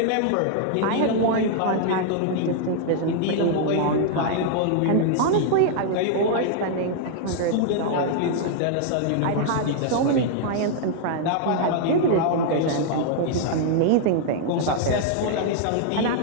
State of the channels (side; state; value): both; different; correlation -0.01